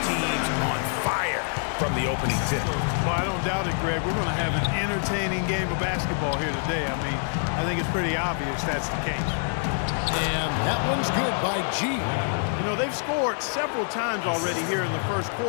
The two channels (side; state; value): right; silent; 61 dB below the other